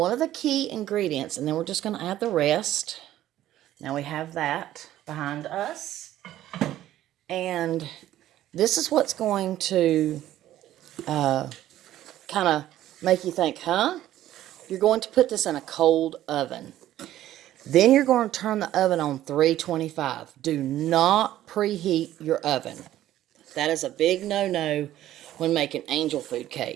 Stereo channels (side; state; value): left; quieter; 13.3 dB